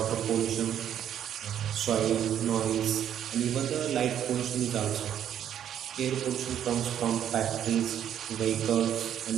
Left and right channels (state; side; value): quieter; left; 10.0 dB